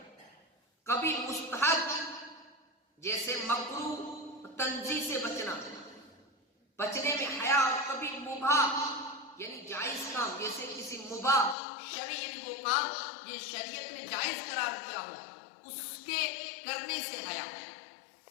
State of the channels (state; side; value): drops out; right; at 11.6 s